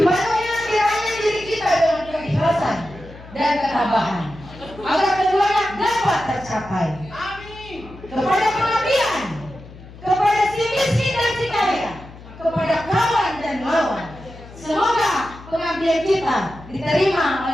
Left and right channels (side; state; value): left; noise; hum, 18 dB below the sound